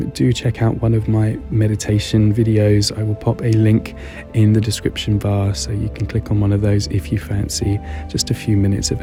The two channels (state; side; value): identical; both; correlation 1.00